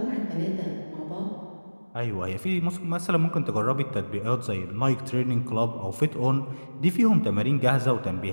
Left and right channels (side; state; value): both; inverted; correlation -1.00